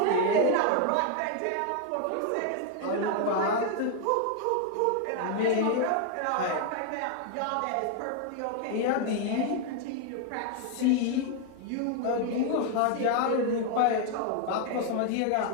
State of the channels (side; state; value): both; different; correlation 0.00